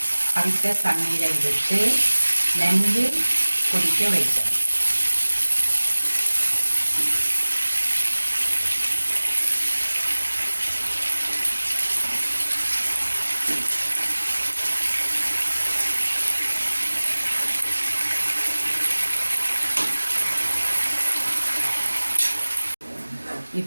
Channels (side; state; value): both; inverted; correlation -1.00